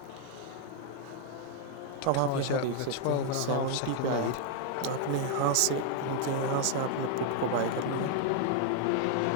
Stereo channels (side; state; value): both; different; correlation 0.00